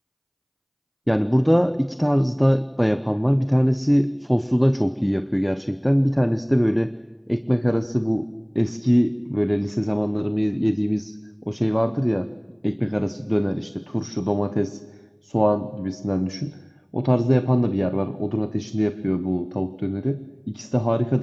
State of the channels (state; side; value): identical; both; correlation 1.00